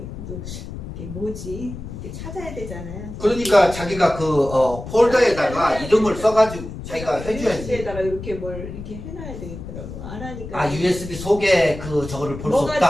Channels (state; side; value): noise; left; rumble, 10 dB below the sound